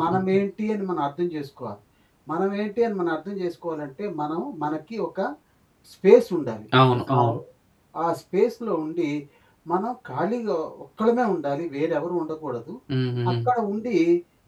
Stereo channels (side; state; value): both; identical; correlation 1.00